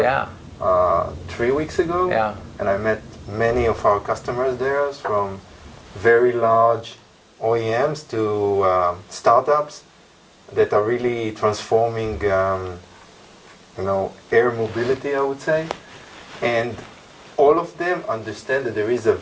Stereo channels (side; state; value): both; identical; correlation 1.00